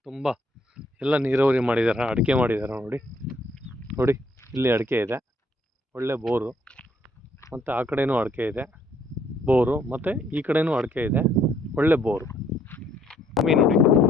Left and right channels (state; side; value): normal; both; correlation 0.66